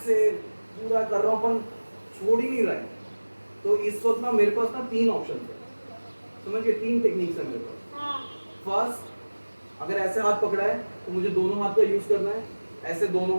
पूरा कर रहा हूँ पर छोड़ ही नहीं रहा है, तो इस वक्त ना मेरे पास ना 3 ऑप्शन है, समझिए 3 टेक्निक्स है मेरे पास। फर्स्ट, अगर ऐसे हाथ पकड़ा है तो मुझे दोनों हाथ का यूज करना है, ऐसे दोनों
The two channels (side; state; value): both; inverted; correlation -1.00